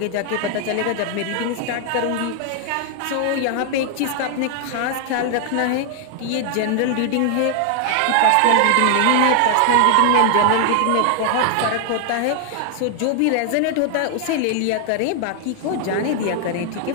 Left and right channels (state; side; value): different; both; correlation 0.00